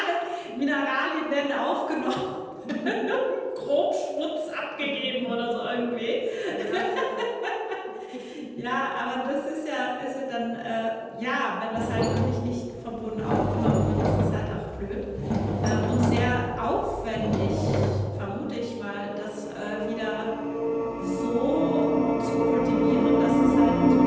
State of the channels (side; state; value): both; identical; correlation 1.00